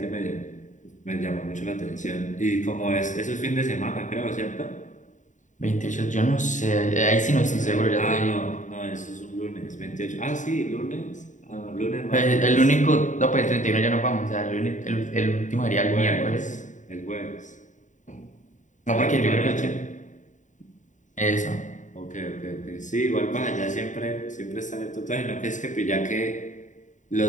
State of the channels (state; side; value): late; right; 0.36 ms